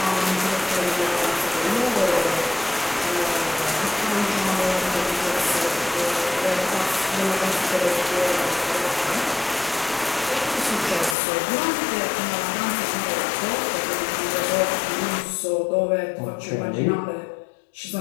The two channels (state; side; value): drops out; right; at 11.2 s